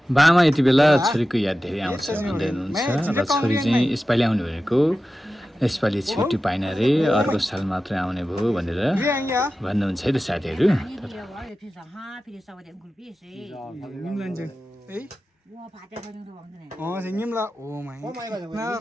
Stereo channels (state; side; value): normal; both; correlation 0.94